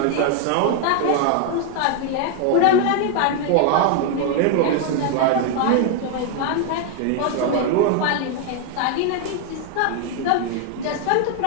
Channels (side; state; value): both; different; correlation 0.01